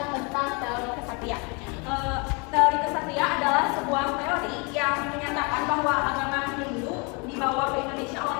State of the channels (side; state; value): right; quieter; 31.3 dB